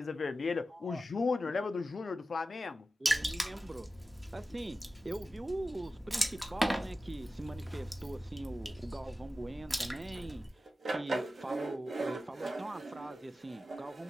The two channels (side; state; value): both; normal; correlation 0.94